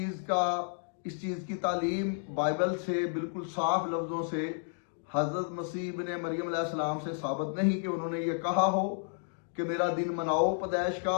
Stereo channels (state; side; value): silent; right; digital silence